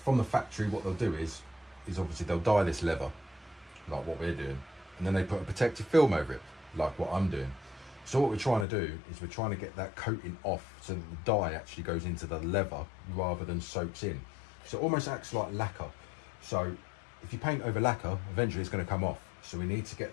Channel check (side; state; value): right; drops out; at 8.7 s